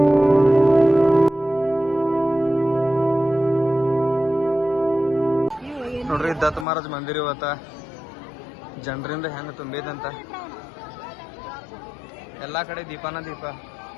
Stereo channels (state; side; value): drops out; right; at 6.7 s